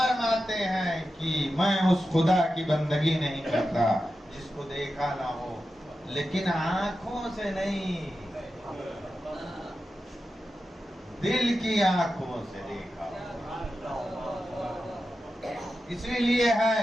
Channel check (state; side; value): normal; both; correlation 0.91